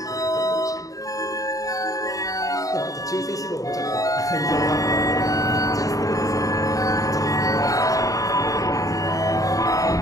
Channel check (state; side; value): late; right; 0.17 ms